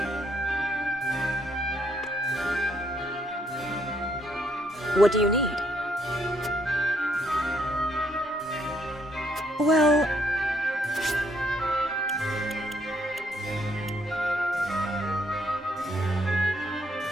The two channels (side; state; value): both; normal; correlation 0.71